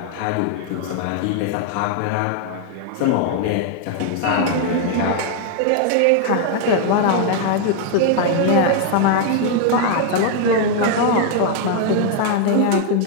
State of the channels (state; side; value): different; both; correlation 0.00